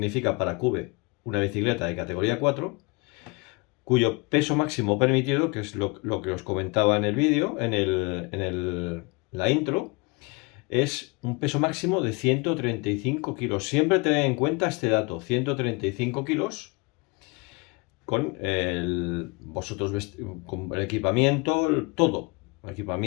para Cube una bicicleta de categoría 4, cuyo peso máximo permitido, que es lo que os comentaba en el vídeo, en la intro, es un peso máximo de 135 kilos. Siempre tened en cuenta este dato, 135 kilos, con con el equipamiento, todo. El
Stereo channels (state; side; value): quieter; right; 27.8 dB